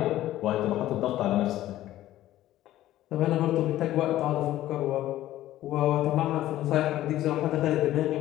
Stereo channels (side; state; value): right; quieter; 14.1 dB